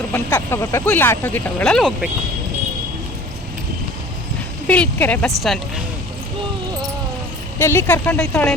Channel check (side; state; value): both; normal; correlation 0.44